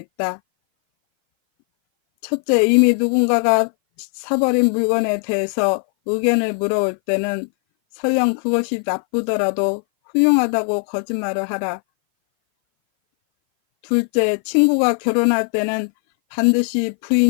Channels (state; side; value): silent; right; 59 dB below the other